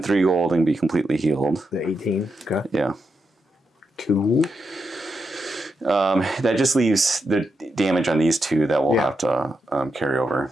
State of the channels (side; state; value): both; normal; correlation 0.85